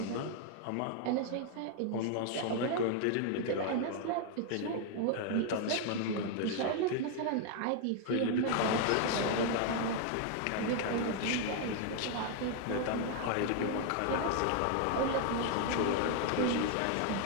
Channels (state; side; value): different; both; correlation 0.00